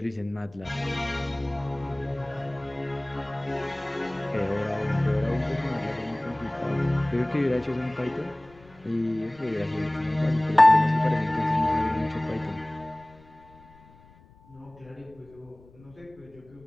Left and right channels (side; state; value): left; noise; rumble, 26 dB below the sound